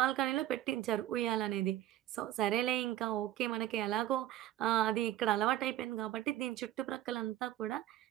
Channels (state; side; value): quieter; left; 13.5 dB